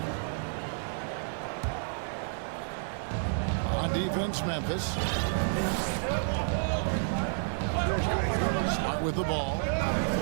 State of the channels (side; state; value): left; silent; 58 dB below the other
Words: On defense, Memphis. Smart with the ball.